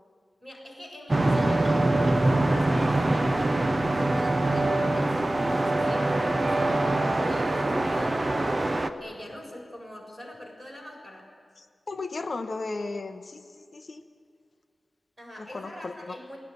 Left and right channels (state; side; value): normal; both; correlation 0.97